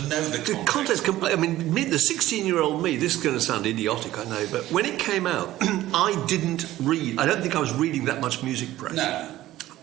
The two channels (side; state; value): left; quieter; 15.1 dB